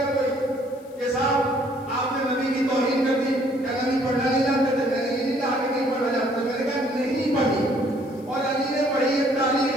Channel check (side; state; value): left; noise; hiss, 28 dB below the sound